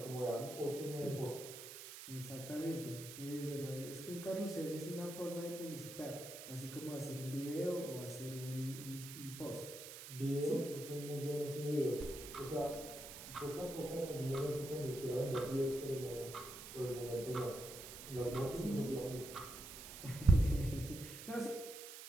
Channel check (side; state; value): right; noise; hiss, 11 dB below the sound